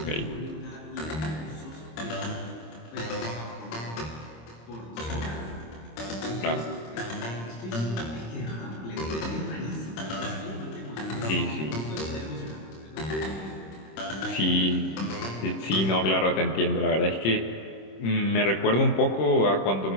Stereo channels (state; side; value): late; right; 26 ms